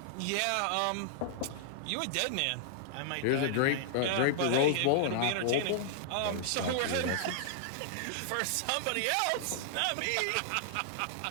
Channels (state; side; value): different; both; correlation -0.01